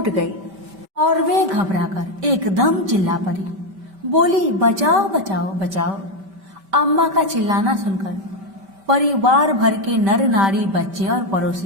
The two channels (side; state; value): left; late; 5.1 ms